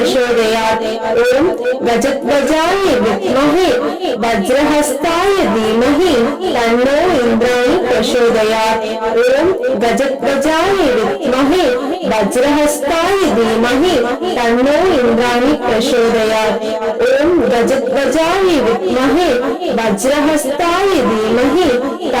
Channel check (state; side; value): identical; both; correlation 1.00